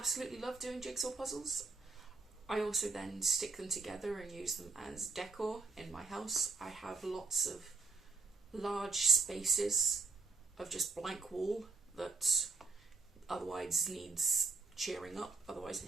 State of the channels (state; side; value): quieter; left; 4.3 dB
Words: love doing jigsaw puzzles. I also then stick them together and use them as decor in my house. I have lots of large spaces of just blank wall that otherwise needs cheering up. Otherwise